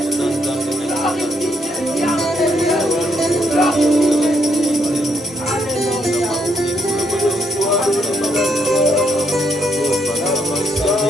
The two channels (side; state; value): both; normal; correlation 0.74